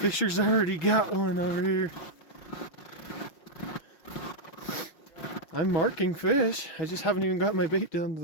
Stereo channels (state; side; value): late; right; 6.2 ms